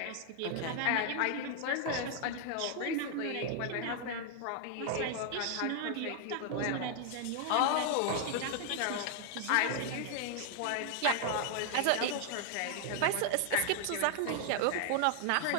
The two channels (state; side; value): different; both; correlation 0.00